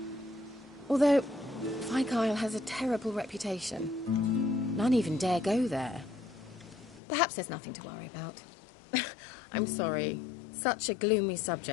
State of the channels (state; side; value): drops out; right; at 7.0 s